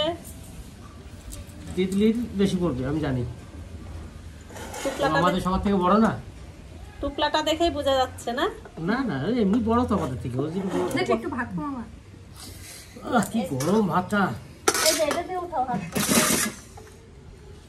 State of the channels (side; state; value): both; identical; correlation 1.00